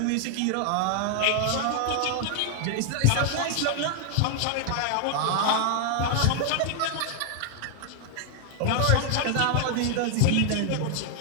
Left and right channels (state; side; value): different; both; correlation 0.00